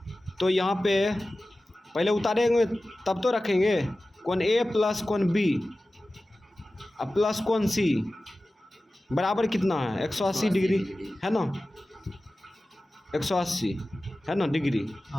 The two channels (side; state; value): both; normal; correlation 0.96